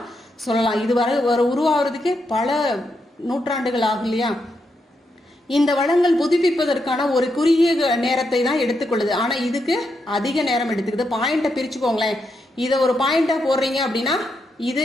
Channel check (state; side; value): normal; both; correlation 0.82